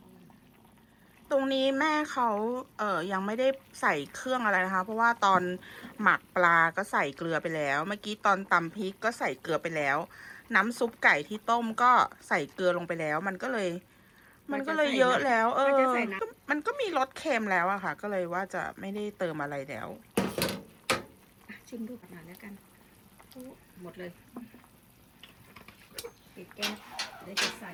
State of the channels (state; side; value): identical; both; correlation 1.00